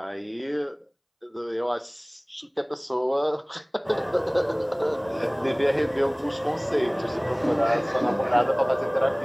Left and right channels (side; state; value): both; identical; correlation 1.00